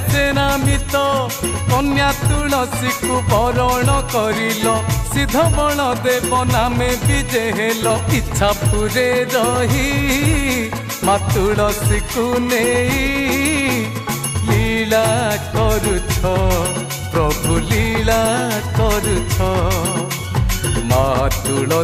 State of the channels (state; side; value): identical; both; correlation 1.00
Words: सेनामित कन्या तुलसी को बरण करिल सिद्ध बलदेव नामे विजय हेल इच्छा पुरे रही माँ तुलसी को नहीं लीला करुछ प्रभु लीला करुछ माँ